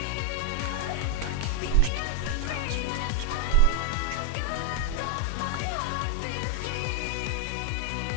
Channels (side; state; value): both; different; correlation -0.01